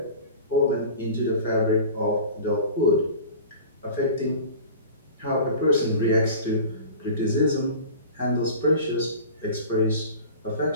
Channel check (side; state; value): both; inverted; correlation -0.37